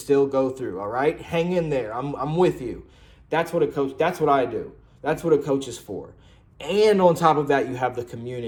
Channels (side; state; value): both; identical; correlation 1.00